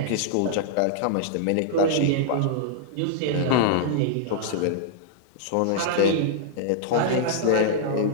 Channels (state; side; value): different; both; correlation -0.01